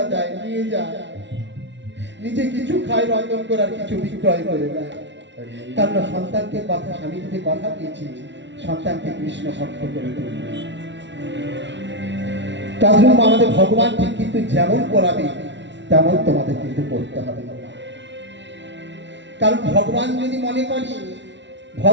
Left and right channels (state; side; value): late; left; 0.52 ms